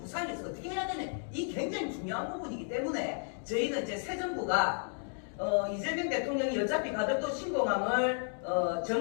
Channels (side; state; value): right; silent; 56 dB below the other